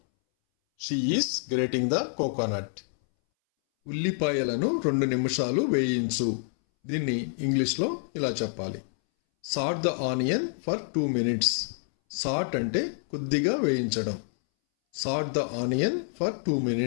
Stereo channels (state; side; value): silent; right; 60 dB below the other